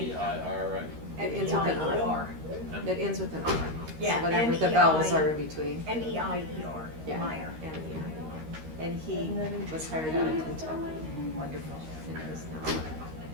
right? It ends with an R. M-E-I-E-R. It ends with an R. Yeah, So whatever the M-E-I vowels are in between. M-E-I-E-R. Yeah. Meyer. M-E-I-R. And he was hired out of Kentucky. Wonderful. And is now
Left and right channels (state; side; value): late; left; 13 ms